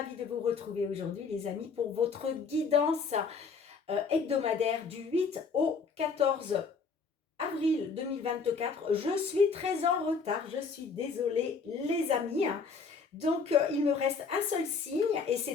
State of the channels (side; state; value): right; quieter; 5.1 dB